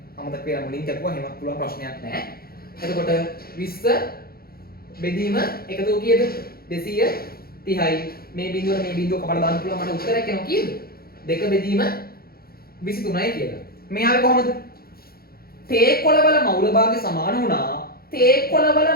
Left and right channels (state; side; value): late; right; 0.44 ms